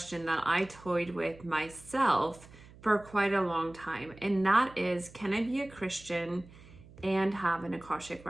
that I toyed with myself for quite a long time. And that is, can I be a Christian and have an Akashic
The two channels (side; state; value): right; noise; hum, 21 dB below the sound